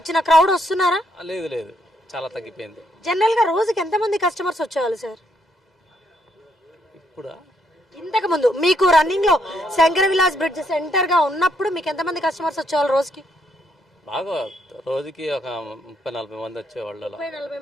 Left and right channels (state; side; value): normal; both; correlation 0.74